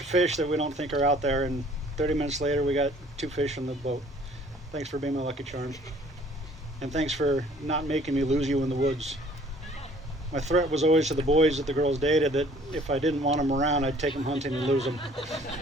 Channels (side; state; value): both; normal; correlation 0.55